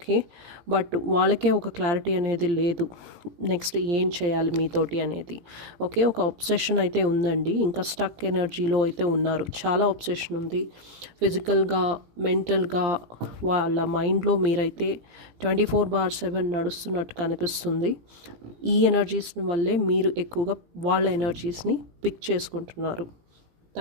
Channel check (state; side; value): late; left; 17 ms